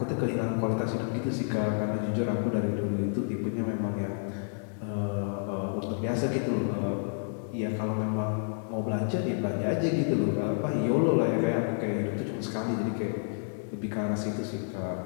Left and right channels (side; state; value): right; silent; digital silence